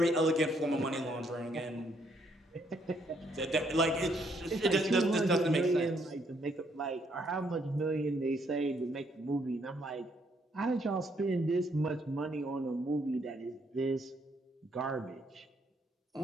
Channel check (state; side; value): normal; both; correlation 0.71